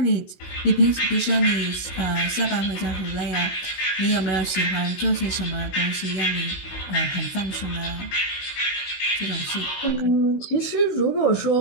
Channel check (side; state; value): right; late; 16 ms